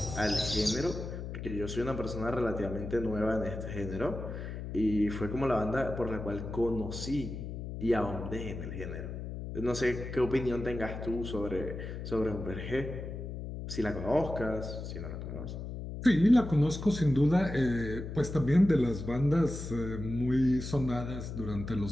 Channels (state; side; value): noise; left; hum, 7 dB below the sound